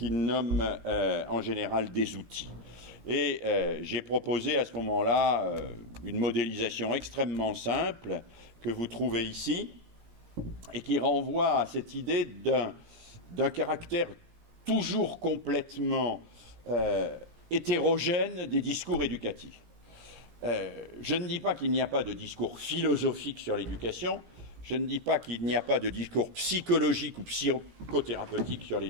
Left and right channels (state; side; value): late; left; 17 ms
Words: nomme en général des outils. Et j'ai proposé à ce moment-là une modélisation extrêmement simple que vous trouvez ici et qui renvoie à cette idée d'un caractère toujours complètement hétérogène des discours éducatifs. Je ne dis pas qu'il n'y a pas de discours philosophique sur l'éducation, je ne dis pas qu'il n'y a pas de discours psychologique ou psychothérapeutique sur